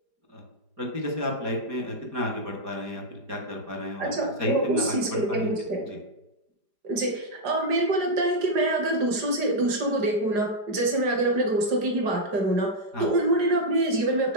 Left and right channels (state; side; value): late; left; 4.9 ms